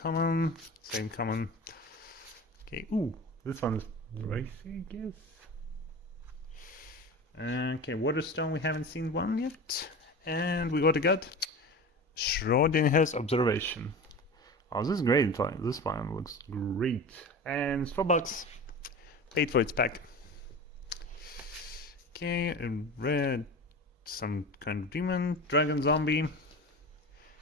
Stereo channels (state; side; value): normal; both; correlation 0.32